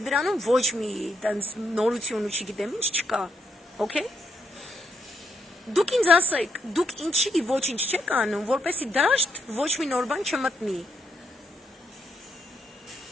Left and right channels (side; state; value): both; normal; correlation 0.76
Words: դրանում ոչ մի տենց նորություն ու չգիտեմ ինչ չկա։ Okay? Դուք ինձ ասեք, դուք ինչի ոչինչ չեք անում, որպեսի դաշտ ոչ մի նոր բան չմտնի։